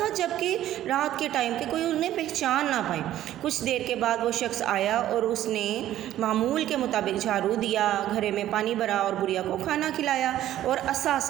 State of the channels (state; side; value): quieter; left; 12.9 dB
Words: جب کہ رات کے ٹائم پہ کوئی انہیں پہچان نہ پائے۔ کچھ دیر کے بعد وہ شخص آیا اور اس نے معمول کے مطابق جھاڑو دیا، گھرے میں پانی بھرا اور بوریا کو کھانا کھلایا اور عصا